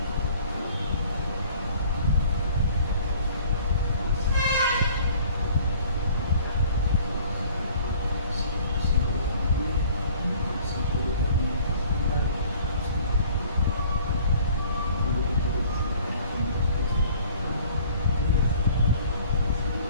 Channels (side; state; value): both; inverted; correlation -0.53